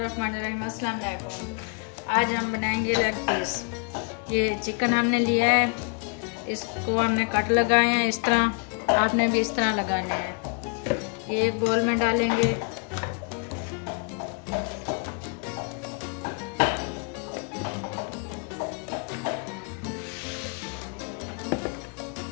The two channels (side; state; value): right; quieter; 39.3 dB